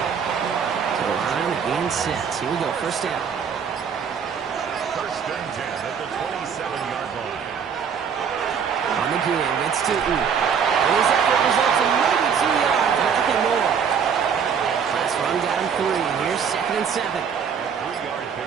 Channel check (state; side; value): quieter; left; 7.0 dB